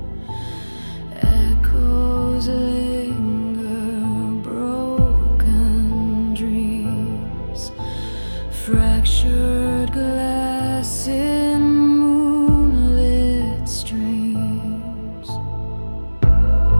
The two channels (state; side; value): inverted; both; correlation -1.00